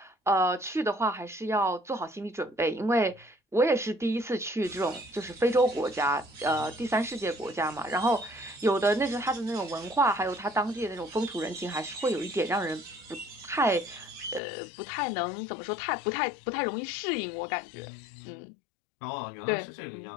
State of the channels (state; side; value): drops out; right; at 14.4 s